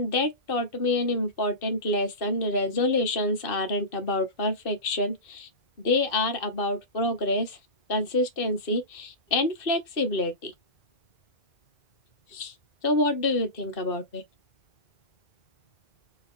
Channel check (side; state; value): right; late; 2.6 ms